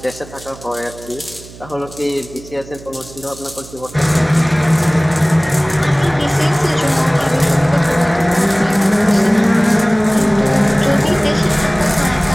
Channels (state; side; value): noise; right; hum, 19 dB below the sound